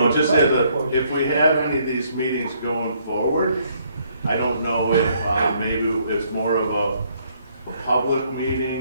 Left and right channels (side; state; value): both; inverted; correlation -0.68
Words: Just as if we have any of these meetings going forward, I don't know if maybe it's more of a public